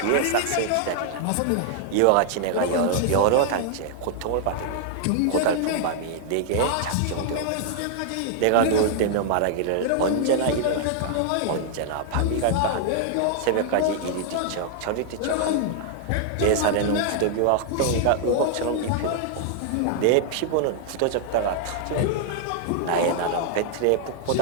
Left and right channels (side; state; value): both; different; correlation 0.00